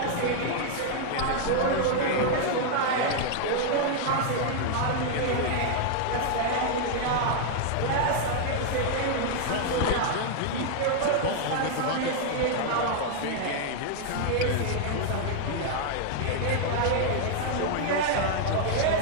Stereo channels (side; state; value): both; different; correlation 0.00